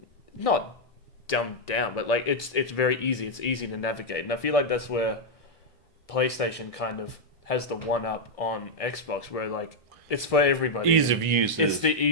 not dumbed down, but like it's very easy. It's easy to navigate, and I feel like that's where PlayStation kind of has the one up on Xbox, where like it's for everybody. Ease of use. It's the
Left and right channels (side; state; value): both; normal; correlation -0.02